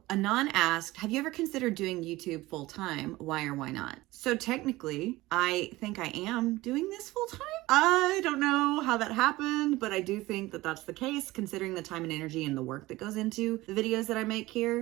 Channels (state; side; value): quieter; left; 18.9 dB